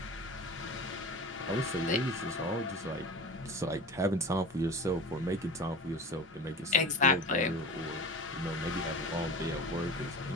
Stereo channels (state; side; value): normal; both; correlation 0.33